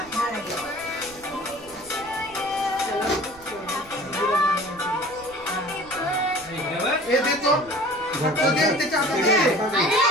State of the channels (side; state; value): right; noise; rumble, 24 dB below the sound